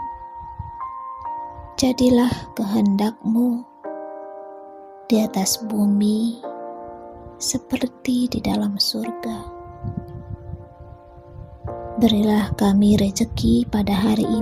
Jadilah kehendak-Mu di atas bumi seperti di dalam surga. Berilah kami rejeki pada hari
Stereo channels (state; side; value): identical; both; correlation 1.00